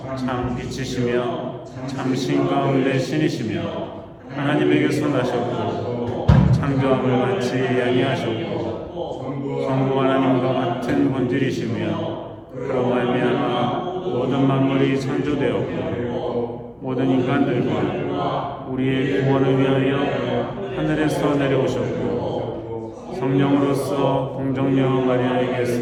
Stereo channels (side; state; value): both; identical; correlation 1.00